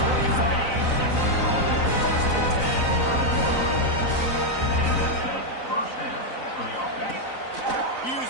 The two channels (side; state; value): right; late; 3.9 ms